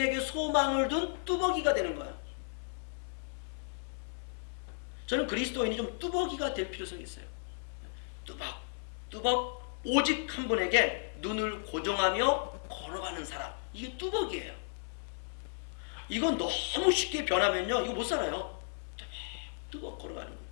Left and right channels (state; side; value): silent; right; digital silence